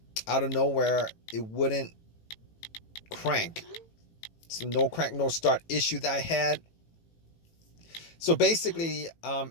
of nowhere, it wouldn't crank. So no crank, no start issue that I had. So basically,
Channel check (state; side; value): late; right; 18 ms